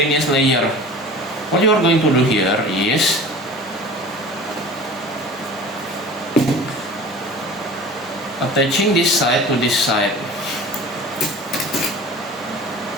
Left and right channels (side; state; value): both; normal; correlation 0.40